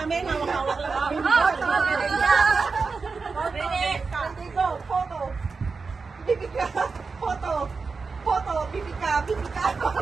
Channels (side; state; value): left; quieter; 4.6 dB